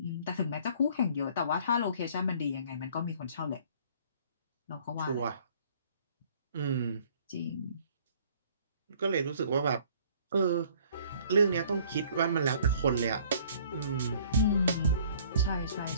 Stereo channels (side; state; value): both; inverted; correlation -0.56